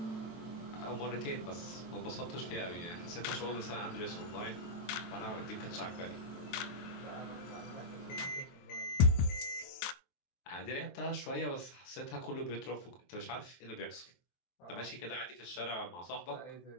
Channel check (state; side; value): late; right; 23 ms